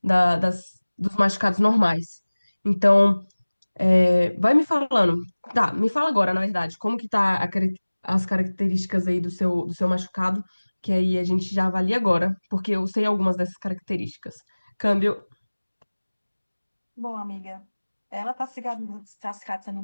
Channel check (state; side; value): inverted; both; correlation -1.00